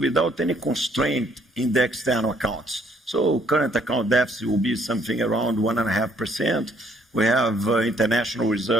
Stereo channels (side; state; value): both; normal; correlation 0.66